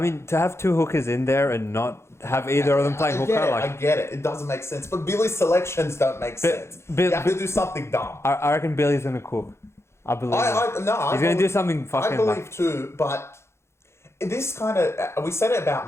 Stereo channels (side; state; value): right; late; 0.13 ms